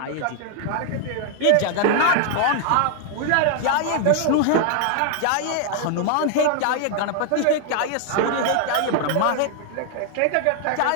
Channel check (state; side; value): different; both; correlation 0.00